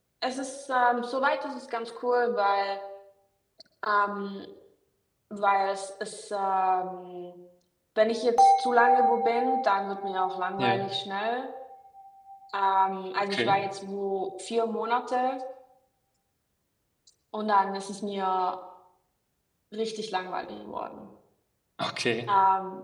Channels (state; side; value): identical; both; correlation 1.00